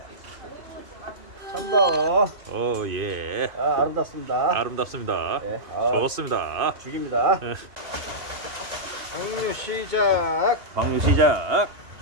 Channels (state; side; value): late; left; 2.5 ms